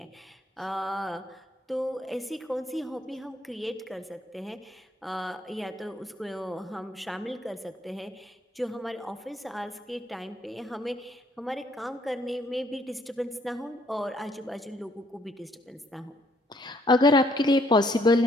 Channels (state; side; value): normal; both; correlation 0.68